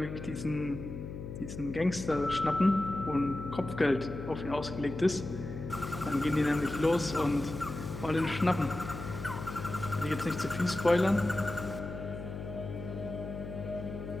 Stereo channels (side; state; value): left; noise; hum, 8 dB below the sound